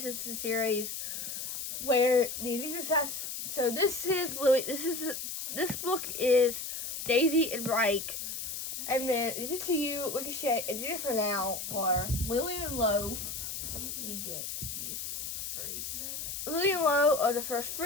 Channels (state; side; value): noise; left; hiss, 5 dB below the sound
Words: series, where the Addicted Obsessed. So this book is Daisy and Reich, and then Addicted to You, Ricochet, Addicted for Now, or Lily and Low. Let me get these free. Lily and Low are the first